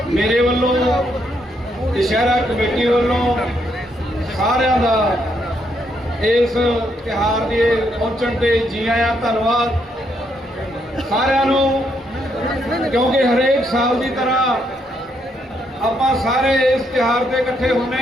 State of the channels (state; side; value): normal; both; correlation 0.75